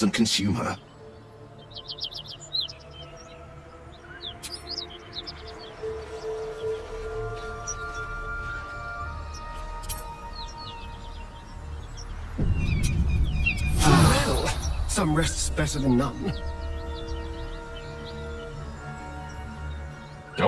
consume her. Well, some rest's better than none.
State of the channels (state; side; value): identical; both; correlation 1.00